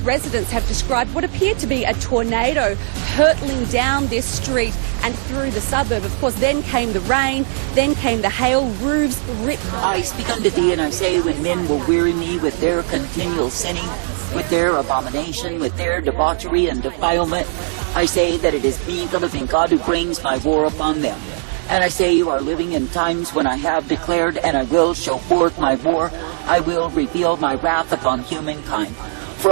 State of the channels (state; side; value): silent; left; digital silence